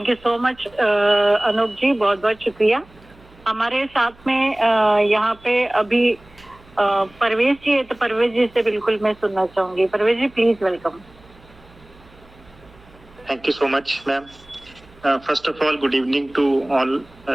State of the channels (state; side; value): noise; right; hum, 27 dB below the sound